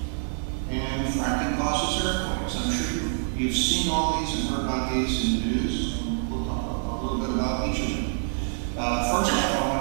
And fracking causes earthquakes. I'm sure you've seen all these and heard about these in the news. And we'll talk a little bit about each of them. First off, I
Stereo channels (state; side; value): silent; left; 60 dB below the other